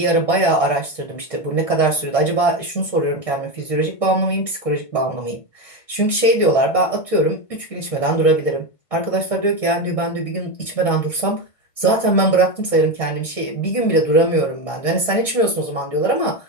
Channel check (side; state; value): right; late; 1.5 ms